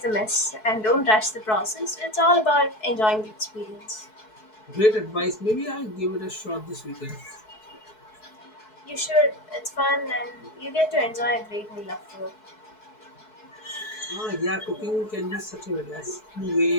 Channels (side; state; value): right; late; 4.6 ms